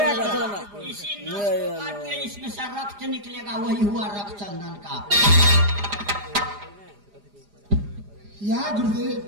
इसी काट के इसमें से रक्त निकलेगा, वही हुआ रक्षचंदन का। या गुरुदेव,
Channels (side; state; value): left; late; 4.9 ms